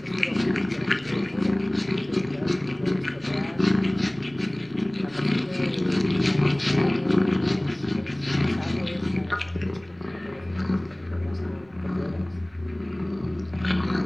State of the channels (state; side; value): noise; right; rumble, 27 dB below the sound